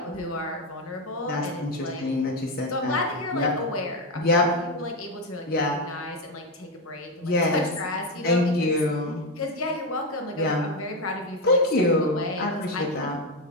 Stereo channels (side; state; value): both; normal; correlation 0.10